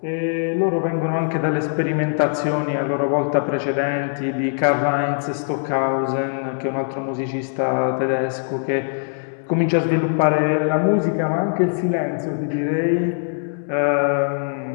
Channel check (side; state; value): right; silent; 65 dB below the other